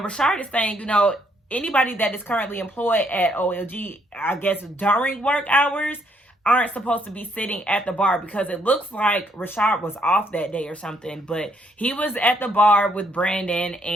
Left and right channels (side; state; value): both; normal; correlation 0.71